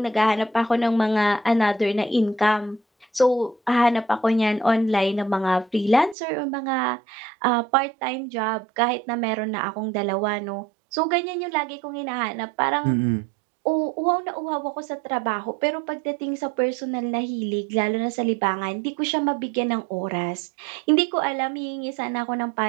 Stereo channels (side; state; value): left; drops out; at 6.2 s